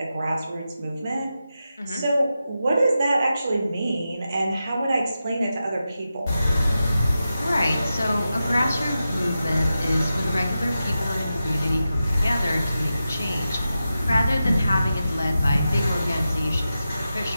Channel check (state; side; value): inverted; both; correlation -0.91